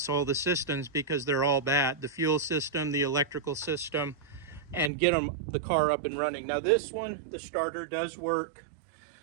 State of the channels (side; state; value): left; drops out; at 4.9 s